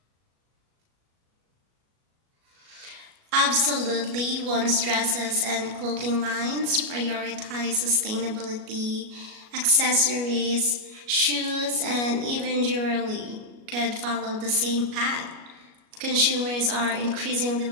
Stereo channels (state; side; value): late; left; 37 ms